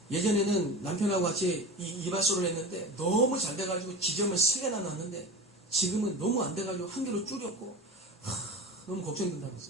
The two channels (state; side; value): normal; both; correlation 0.30